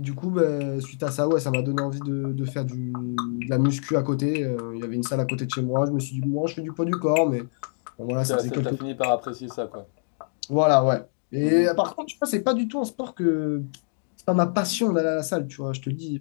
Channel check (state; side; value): silent; right; digital silence